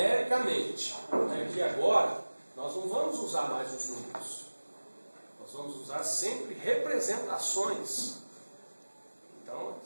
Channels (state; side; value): inverted; both; correlation -1.00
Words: aqui agora, nós não vamos usar mais os números. Nós vamos usar sempre representações. Então,